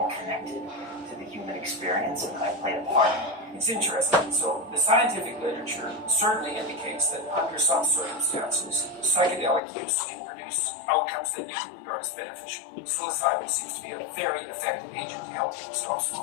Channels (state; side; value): drops out; right; at 9.6 s